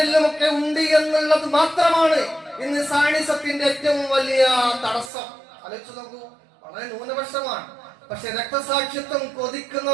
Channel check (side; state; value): left; drops out; at 5.1 s